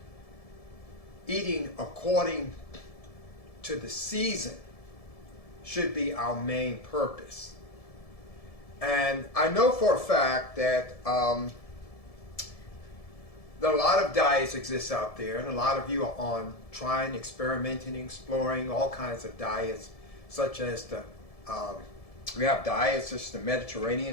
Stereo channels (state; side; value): late; right; 1.7 ms